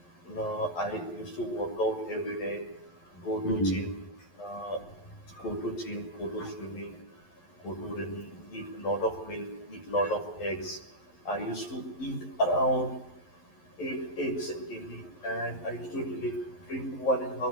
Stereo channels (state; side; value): late; right; 11 ms